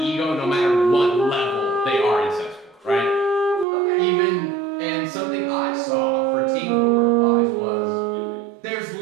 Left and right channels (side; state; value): left; drops out; at 3.7 s